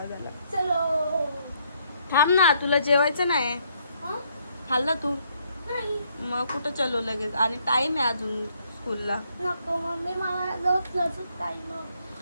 आला. चलो. थांब ना, तुला जेवायचं नाही? हा? खाल्लं तू? नाही. मग कुठं चलो लगेच? आणि टाइम आहे अजून स्कूलला. नको मम्मी, मला रोज टाइम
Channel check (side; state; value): both; inverted; correlation -0.70